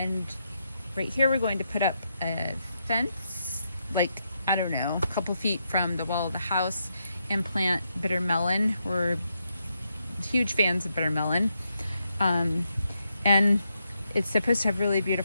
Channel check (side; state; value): both; inverted; correlation -0.82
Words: right here we're going to put up a fence, like, I don't know, a couple feet from the wall of the house, and plant bitter melon. We're huge fans of bitter melon. And it's supposed to have really